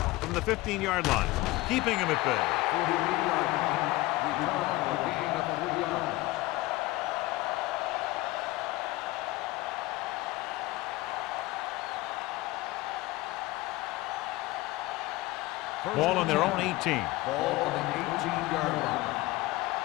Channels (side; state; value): right; quieter; 19.5 dB